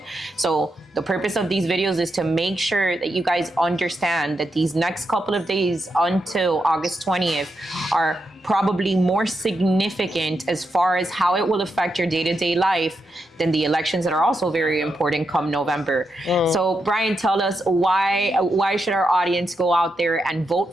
So the purpose of these videos is to make sure that you guys understand that these next couple of days until August 20th are probably more significant as far as how it will affect your day-to-day life than the elections that are also very important come November. So Bryan, tell us why should our audience go out there and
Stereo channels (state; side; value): normal; both; correlation 0.84